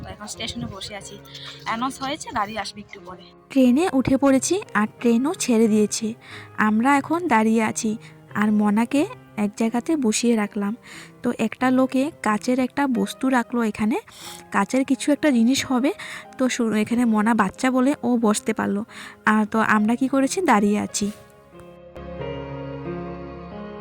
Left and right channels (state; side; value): identical; both; correlation 1.00